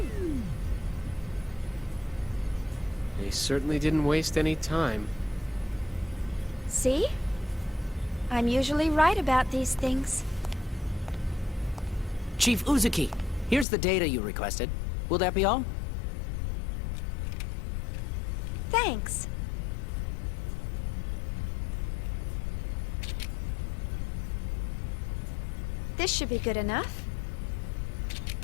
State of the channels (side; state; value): right; drops out; at 13.7 s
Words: They certainly didn't waste any time. See? I'm usually right about these things. Chief Uzuki, Here's the data you requested. Will that be all? Thanks. This should be good enough.